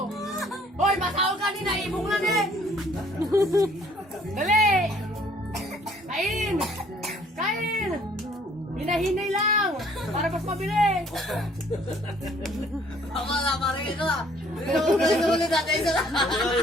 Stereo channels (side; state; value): both; normal; correlation 0.59